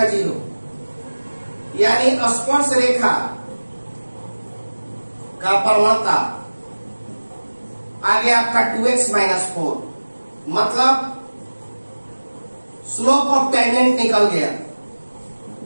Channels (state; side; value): inverted; both; correlation -1.00